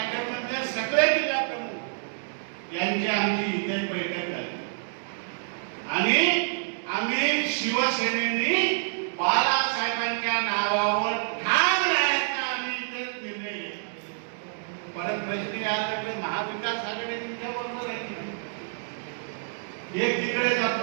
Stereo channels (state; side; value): silent; left; digital silence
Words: मध्ये सगळे जिल्हा प्रमुख यांची आमची इथे बैठक झाली. आणि आम्ही शिवसेनेने बाळासाहेबांच्या नावावर ठाम राहायचा आम्ही इथे निर्णय घेतला. परत प्रश्न याकडे महाविकास आघाडी तुमच्या बरोबर आहे, एक तिकडे